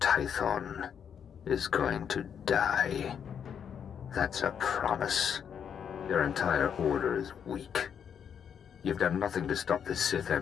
is going to die. That's a promise. Your entire order is weak. You've done nothing to stop the Sith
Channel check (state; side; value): quieter; right; 7.9 dB